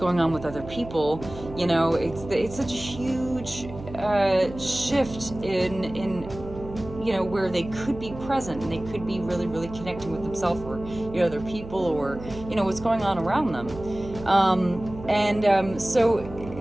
on with other people, it's such a huge shift in where they could be present and they could be really, really connecting with themselves, or other people, or what's going on around them. So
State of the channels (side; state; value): right; noise; hum, 13 dB below the sound